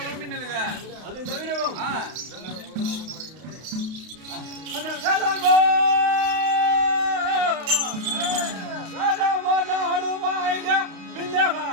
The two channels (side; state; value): left; late; 32 ms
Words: பின்னுதுங்க. அது தவிரவும் ஆ வேளாங்கோ வேளாங்கோ நாடு வாழ்க